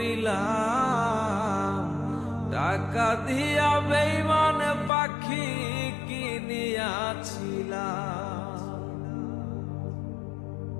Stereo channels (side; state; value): right; drops out; at 4.9 s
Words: টাকা দিয়া বেঈমান পাখি কিনিয়াছিলাম।